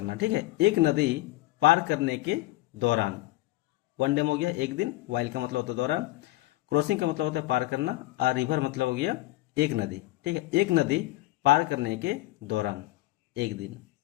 ठीक है, एक नदी पार करने के दौरान, वन डे में हो गया एक दिन, वाइल का मतलब होता है दौरान, क्रॉसिंग का मतलब होता है पार करना, आ रिवर मतलब हो गया एक नदी, ठीक है, एक नदी पार करने के दौरान, एक दिन,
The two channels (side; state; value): right; quieter; 17.7 dB